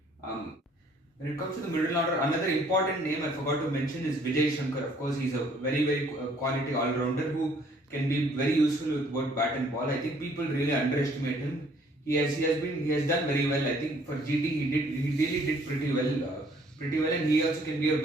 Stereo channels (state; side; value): normal; both; correlation 0.61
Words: When it comes to the middle order, another important name I forgot to mention is Vijay Shankar. Of course, he's a very quality all-rounder who can be very useful with both bat and ball. I think people really underestimate him. He has done very well. I think for GT he really did pretty well, and he also can be a